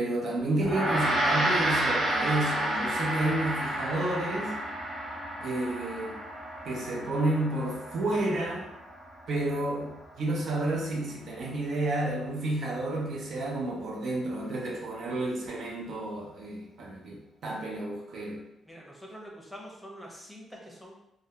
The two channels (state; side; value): normal; both; correlation 0.73